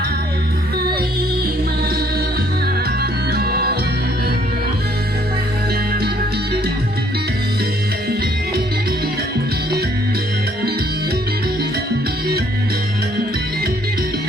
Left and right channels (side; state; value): both; normal; correlation 0.64